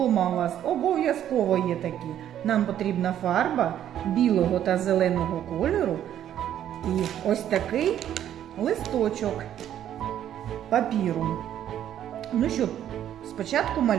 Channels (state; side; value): quieter; left; 10.8 dB